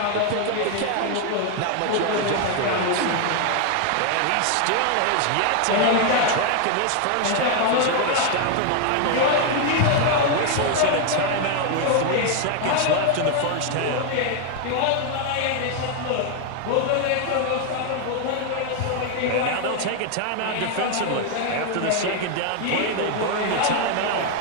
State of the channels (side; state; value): both; different; correlation 0.01